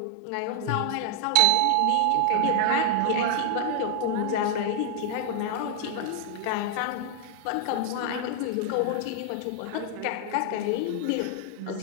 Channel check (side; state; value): both; different; correlation 0.00